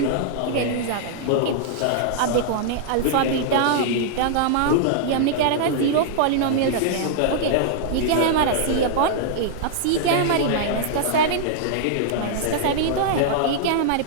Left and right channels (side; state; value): both; different; correlation -0.02